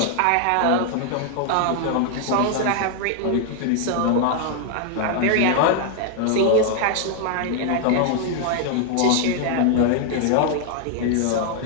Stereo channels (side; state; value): both; different; correlation 0.00